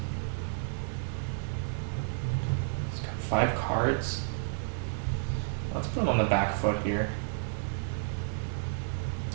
It's got 5 cards. Let's put him on the back foot here.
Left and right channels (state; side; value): silent; left; digital silence